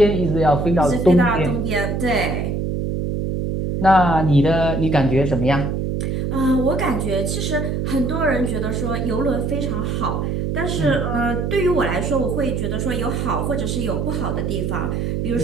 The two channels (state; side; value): noise; right; hum, 1 dB below the sound